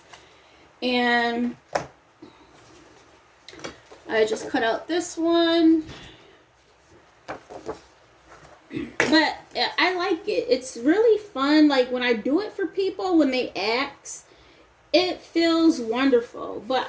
And I just cut out this one. But I like it. It's really fun. Like when I do it for people, when they ask, it feels wonderful. But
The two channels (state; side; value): identical; both; correlation 1.00